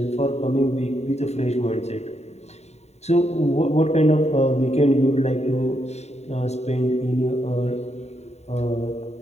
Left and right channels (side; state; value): right; late; 0.32 ms